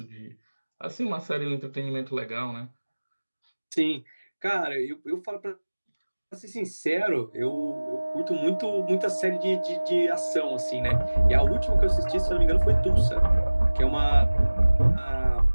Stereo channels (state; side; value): inverted; both; correlation -1.00